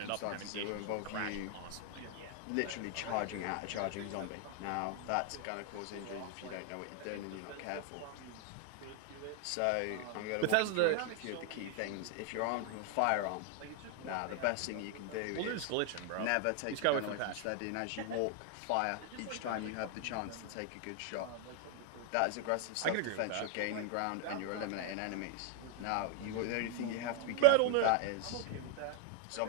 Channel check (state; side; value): different; both; correlation 0.00